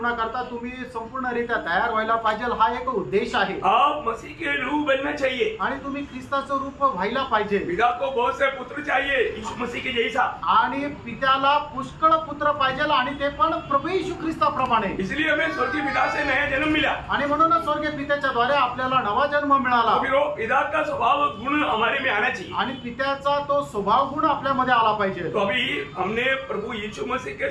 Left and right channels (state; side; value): identical; both; correlation 1.00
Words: तुम्ही संपूर्णरित्या तयार व्हायला पाहिजे, हा एक उद्देश आहे। आप मसीह के रूप बनना चाहिए, आणि तुम्ही ख्रिस्ताचं रूप व्हायला पाहिजे। पिता को बहुत से पुत्र चाहिए यीशु मसीह के जैसा, आणि पित्याला पुष्कळ पुत्र पाहिजे, आणि ते पण प्रभू येशू ख्रिस्ताप्रमाणे। इसलिए हमें स्वर्गीय पिता से नया जन्म मिला, आणि म्हणूनच स्वर्गीय पित्याच्या द्वारे आपल्याला नवा जन्म मिळाला। फिर वो पिता का स्वभाव गुण हमारे में आना चाहिए, आणि पित्याचा तो स्वभाव गुण आपल्यामध्ये आला पाहिजे। तो अभी हमने प्रभु यीशु मसीह के